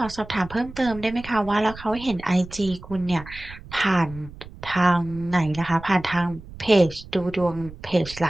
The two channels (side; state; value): right; noise; rumble, 16 dB below the sound